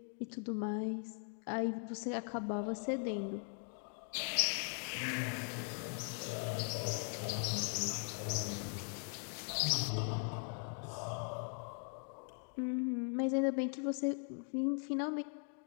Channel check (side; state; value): right; silent; 51 dB below the other